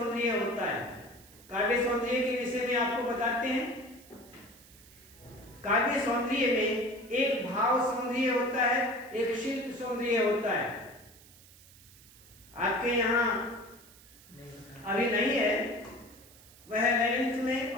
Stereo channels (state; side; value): noise; right; hiss, 23 dB below the sound